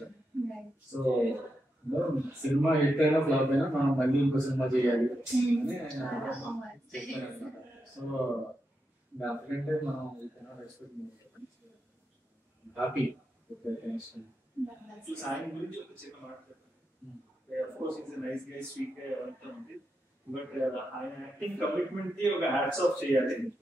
So cinema hit అయినా ఫ్లాప్ అయినా మనం మళ్ళీ ఇంకో సినిమా చేయాలి అని చెప్పారన్నమాట. సో దానికంటే మనం హ్యాపీ. ఆయన గురించి ఒక చిన్న మాట of course is nice guy, sweet guy అవంతా ఉంది. బట్ ఆయన యాక్టింగ్ కమిట్మెంట్ కి ఒక హ్యాట్స్ ఆఫ్ చేయాలి.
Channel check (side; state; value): both; normal; correlation 0.86